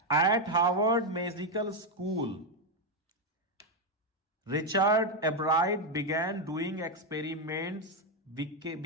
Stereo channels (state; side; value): normal; both; correlation 0.04